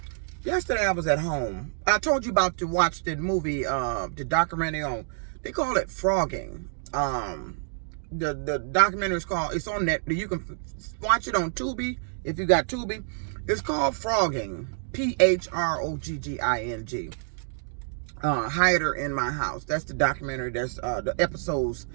Yesterday I was at home. I told you about to watch the movie, the documentary on, they call it Phrogging. The documentary is called, it's on net, you can watch it on Tubi, if you got Tubi. It's called Phrogging, Phrogging. Hider in My House. That's the documentary. That's the episodes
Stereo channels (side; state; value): left; silent; digital silence